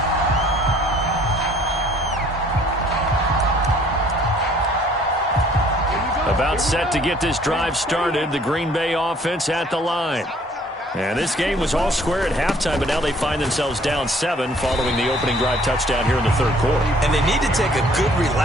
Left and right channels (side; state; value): both; normal; correlation 0.58